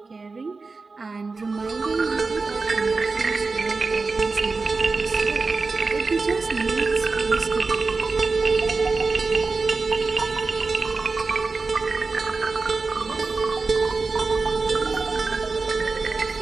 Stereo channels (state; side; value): quieter; left; 4.0 dB